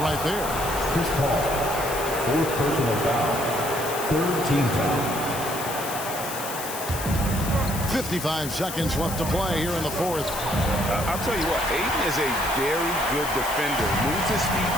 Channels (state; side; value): noise; left; hiss, 8 dB below the sound